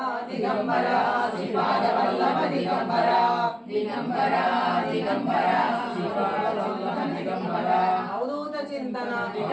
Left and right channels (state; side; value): identical; both; correlation 1.00